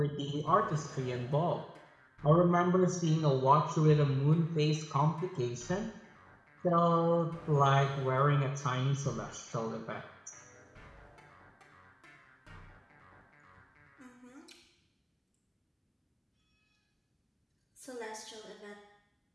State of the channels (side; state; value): both; identical; correlation 1.00